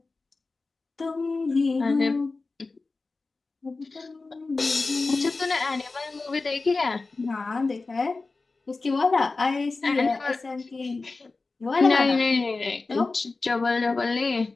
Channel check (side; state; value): right; quieter; 3.7 dB